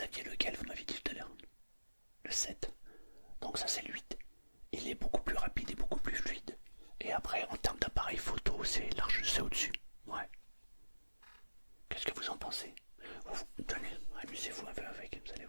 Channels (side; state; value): both; inverted; correlation -1.00